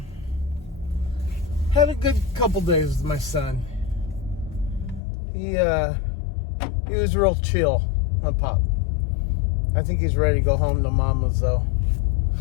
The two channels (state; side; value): drops out; right; at 5.0 s